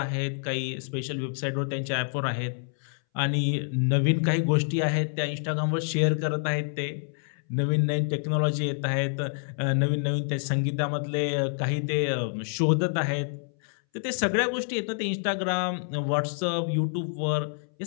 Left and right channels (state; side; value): silent; right; 60 dB below the other